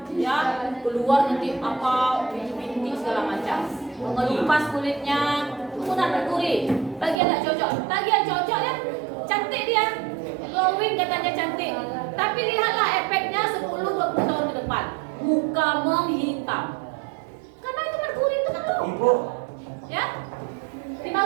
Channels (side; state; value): left; drops out; at 7.2 s